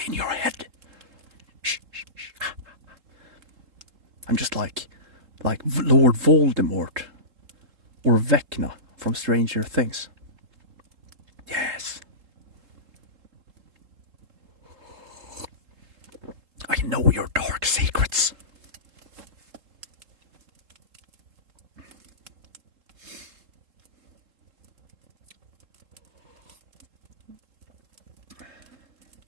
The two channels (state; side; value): late; left; 3.7 ms